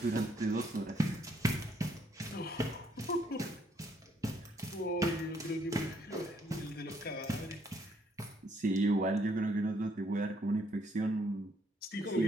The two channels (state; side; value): normal; both; correlation 0.69